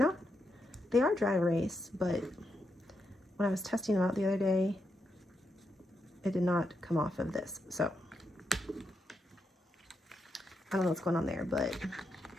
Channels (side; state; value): both; normal; correlation 0.83